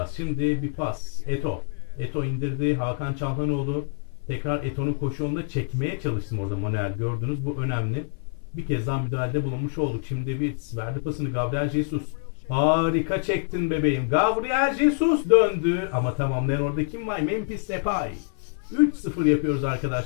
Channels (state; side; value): silent; right; 56 dB below the other